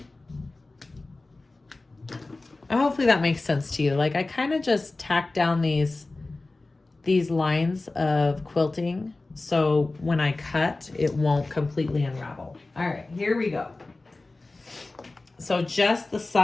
Hopefully that makes sense to you. Like I kind of just tack down these lines of quilting so when I cut, it won't completely unravel. All right, here we go. So just the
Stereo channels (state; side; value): quieter; right; 3.2 dB